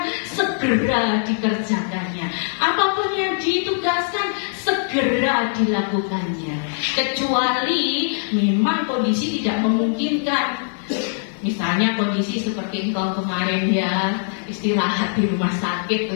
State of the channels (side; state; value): right; silent; digital silence